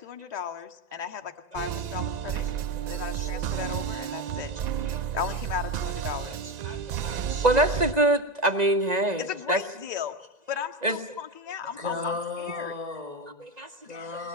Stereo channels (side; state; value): left; late; 1.9 ms